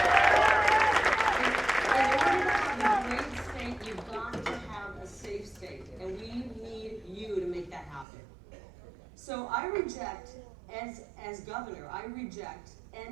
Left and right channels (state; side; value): drops out; left; at 8.1 s